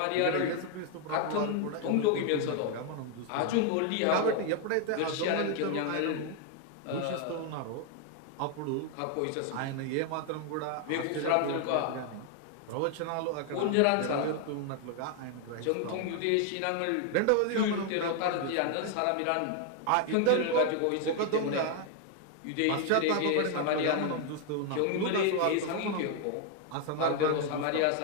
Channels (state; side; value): different; both; correlation 0.00